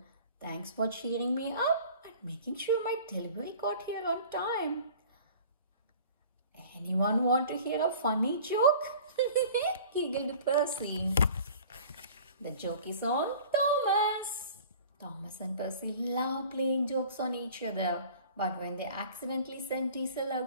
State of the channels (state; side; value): inverted; both; correlation -0.45